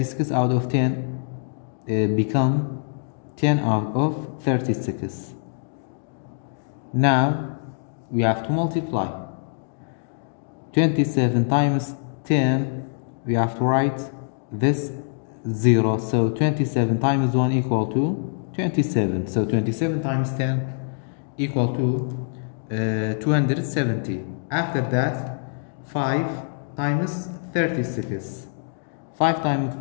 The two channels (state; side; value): silent; right; digital silence